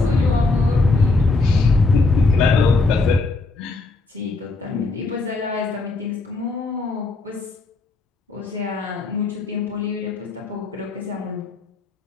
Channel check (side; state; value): right; quieter; 3.6 dB